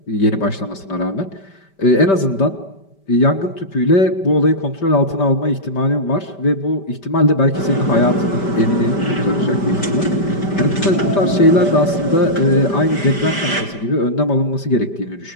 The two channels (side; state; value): right; late; 5.1 ms